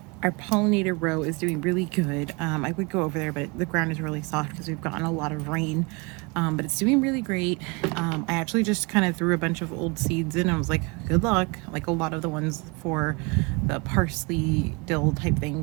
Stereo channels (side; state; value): left; quieter; 28.7 dB